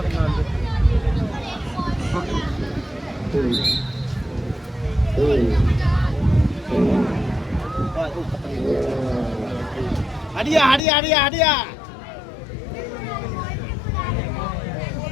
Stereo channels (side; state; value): right; drops out; at 10.8 s